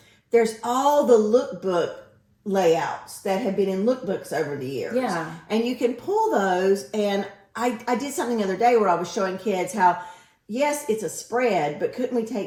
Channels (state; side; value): identical; both; correlation 1.00